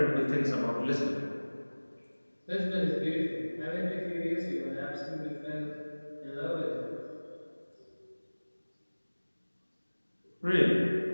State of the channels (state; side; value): inverted; both; correlation -1.00